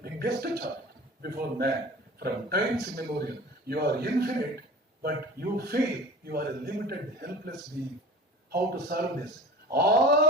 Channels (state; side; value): normal; both; correlation 0.38